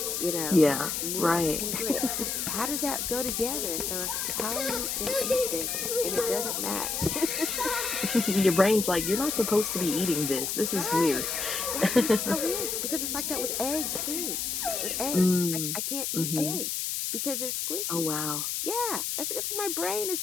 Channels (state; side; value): noise; left; hiss, 1 dB below the sound